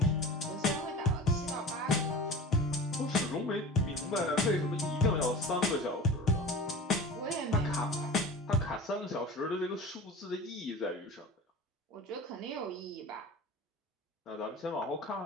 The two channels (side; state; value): both; normal; correlation 0.35